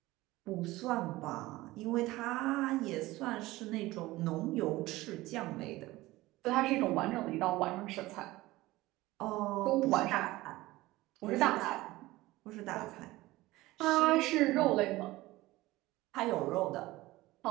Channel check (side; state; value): left; quieter; 18.6 dB